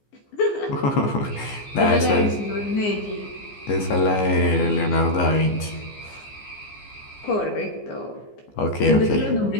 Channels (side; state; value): right; late; 15 ms